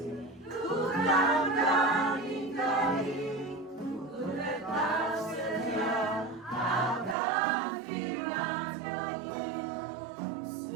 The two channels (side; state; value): left; drops out; at 7.2 s